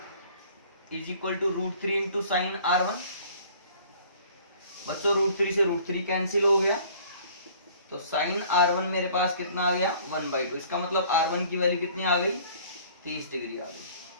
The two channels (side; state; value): both; inverted; correlation -0.53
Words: is equal to √3 into sine R1। बच्चों √3 से √3 कैंसिल हो गया, तो साइन R1 मेरे पास कितना आ गया 1/2। इसका मतलब R1 की वैल्यू कितनी आ गई 30 डिग्री आ गई।